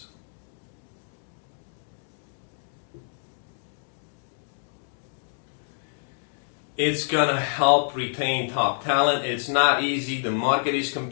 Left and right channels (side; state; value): right; silent; digital silence